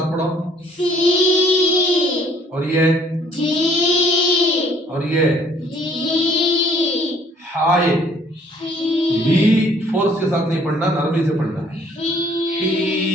पढ़ो। सी और ये जी। और ये जी। हाय ही फोर्स के साथ नहीं पढ़ना, नरमी से पढ़ना है। ही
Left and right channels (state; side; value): normal; both; correlation 0.60